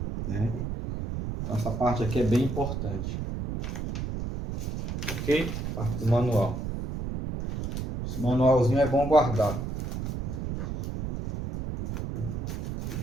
né? Então, essa parte aqui é bem importante. Ok? Parte do manual. Esse manualzinho é bom guardar.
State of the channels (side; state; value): right; noise; rumble, 4 dB below the sound